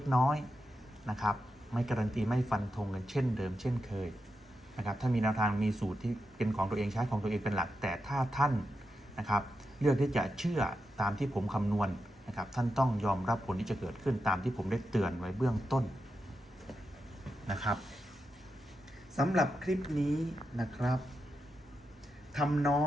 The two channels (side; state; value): both; normal; correlation 0.87